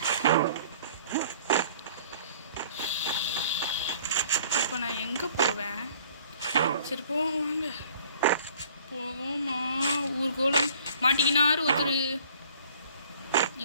இப்போ நான் எங்கே போவேன்? சரி போவோம், வாங்க போவோமா. ஊர்கோலம் மாட்டிக்கினாரு ஒருத்தர்.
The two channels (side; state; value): both; inverted; correlation -0.54